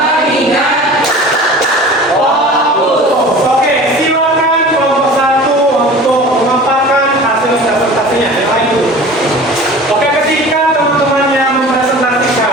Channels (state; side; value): normal; both; correlation 0.40